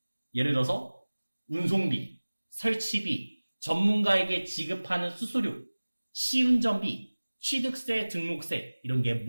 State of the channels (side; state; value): both; inverted; correlation -1.00